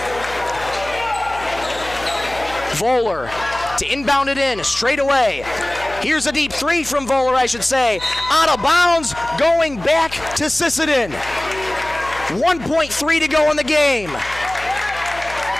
Voller to inbound it in straight away. Here's a deep three from Voller, I should say. Out of bounds, going back to Sisseton. 1.3 to go in the game.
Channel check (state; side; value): noise; left; hum, 17 dB below the sound